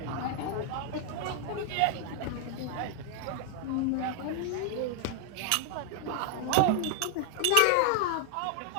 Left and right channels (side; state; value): both; different; correlation 0.00